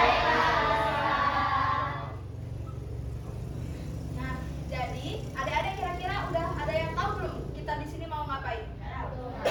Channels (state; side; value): identical; both; correlation 1.00